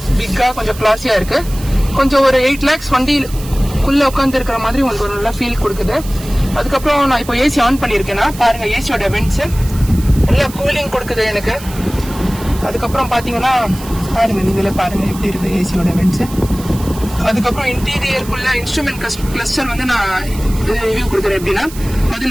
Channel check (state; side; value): noise; right; hiss, 16 dB below the sound